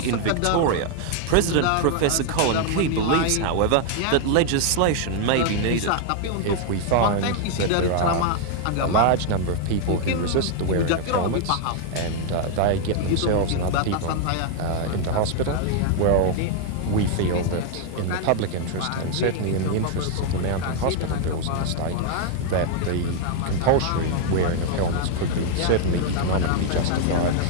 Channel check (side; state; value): both; different; correlation 0.00